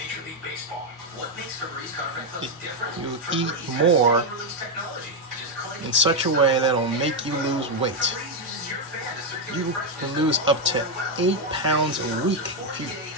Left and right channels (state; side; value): normal; both; correlation 0.03